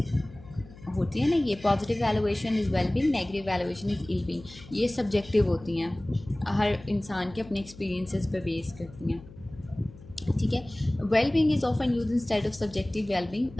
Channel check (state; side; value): noise; left; hum, 19 dB below the sound